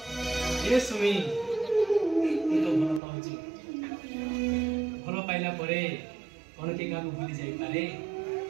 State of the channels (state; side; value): drops out; left; at 3.0 s